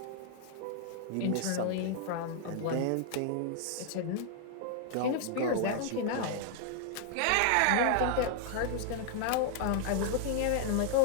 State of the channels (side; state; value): both; different; correlation 0.00